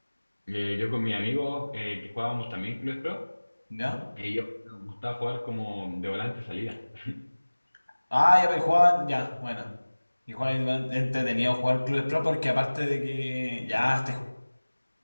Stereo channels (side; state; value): both; inverted; correlation -1.00